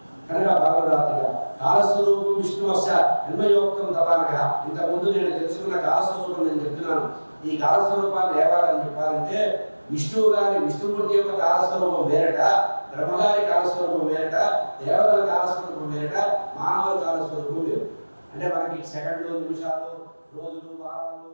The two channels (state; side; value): inverted; both; correlation -1.00